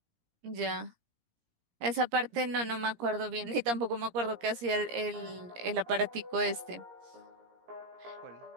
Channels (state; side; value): late; left; 17 ms